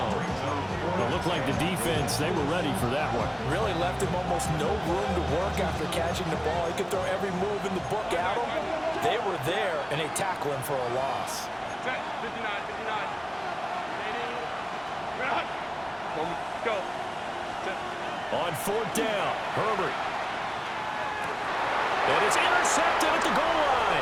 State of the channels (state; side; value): identical; both; correlation 1.00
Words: It looked like the defense, they were ready for that one. Really left him almost no room to work after catching the ball. He could throw every move in the book at him. They were there, and they tackle him for a loss. 59. Go. On 4th down, Herbert. And it's intercepted at the goal